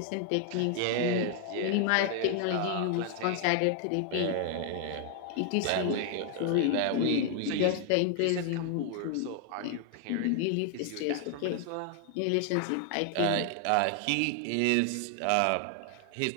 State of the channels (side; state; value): both; different; correlation 0.00